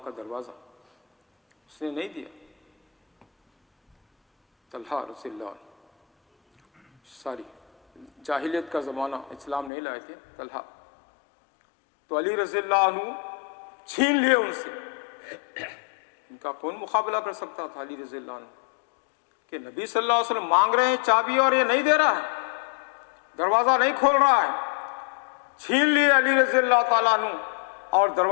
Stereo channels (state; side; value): drops out; right; at 9.7 s